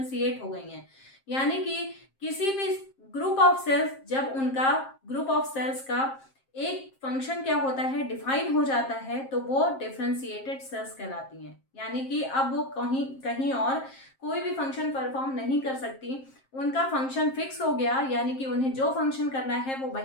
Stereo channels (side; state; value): right; late; 7.5 ms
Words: हो गई हैं। यानी कि किसी भी ग्रुप ऑफ सेल्स, जब उनका ग्रुप ऑफ सेल्स का एक फंक्शन क्या होता है, डिफाइन हो जाता है, तो वो डिफ्रेंशिएटेड सेल्स कहलाती हैं। यानी कि अब वो कहीं कहीं और कोई भी फंक्शन परफॉर्म नहीं कर सकती, उनका फंक्शन फिक्स हो गया, यानी कि उन्हें जो फंक्शन करना है वो